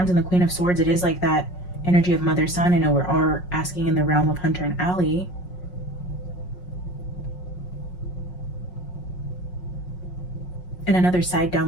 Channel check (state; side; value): late; right; 5.5 ms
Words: and the Queen of Swords, it is like that energy of mother son. I know we're all asking in the realm of Hunter and Alli. And another side